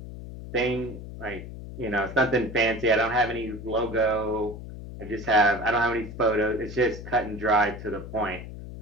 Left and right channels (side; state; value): left; noise; hum, 11 dB below the sound